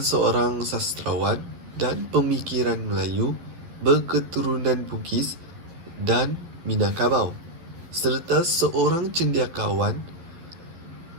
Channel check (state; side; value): late; left; 12 ms